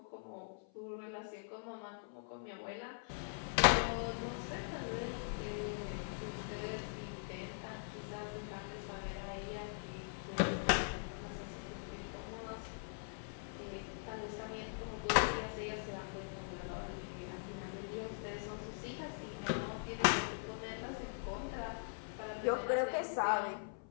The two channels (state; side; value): silent; right; 50 dB below the other